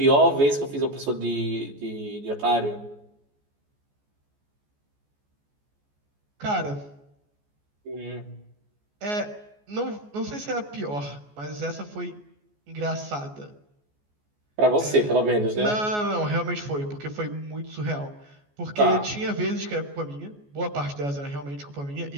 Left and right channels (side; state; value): left; late; 14 ms